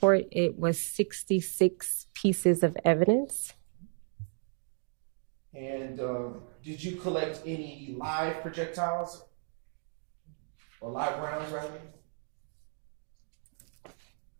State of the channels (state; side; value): silent; left; 56 dB below the other